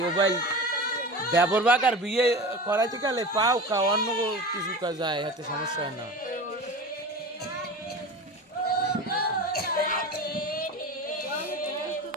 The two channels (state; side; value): normal; both; correlation 0.32